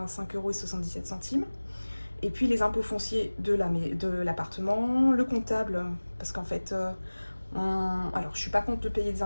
€. Et puis les impôts fonciers de l'appartement, le comptable, parce qu'en fait, alors je suis pas contre de payer des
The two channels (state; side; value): inverted; both; correlation -1.00